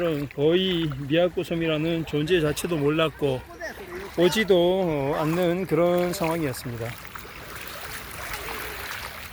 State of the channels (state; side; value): identical; both; correlation 1.00